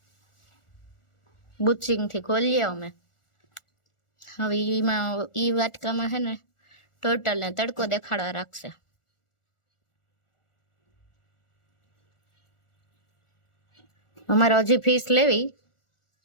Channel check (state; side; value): late; right; 1.4 ms